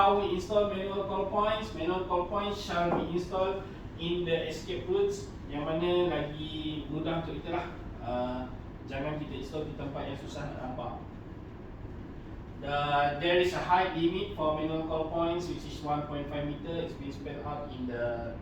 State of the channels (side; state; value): both; identical; correlation 1.00